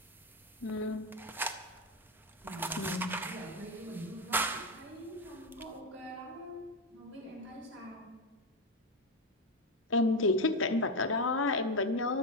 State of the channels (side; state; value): both; normal; correlation 0.11